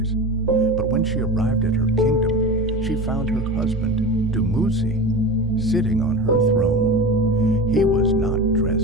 But when she arrived at her kingdom, she found her husband, Dumuzi, sitting on her throne. He was not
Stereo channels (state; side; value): normal; both; correlation 0.28